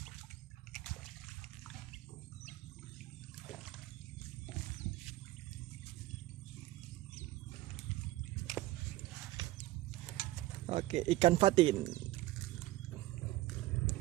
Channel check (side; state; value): left; quieter; 17.0 dB